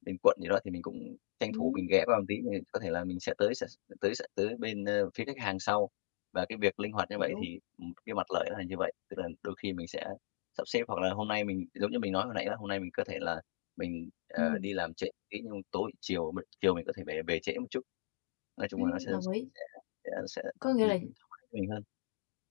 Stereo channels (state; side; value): silent; right; digital silence